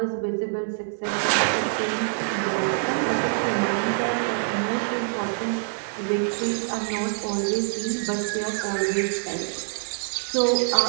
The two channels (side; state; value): left; silent; digital silence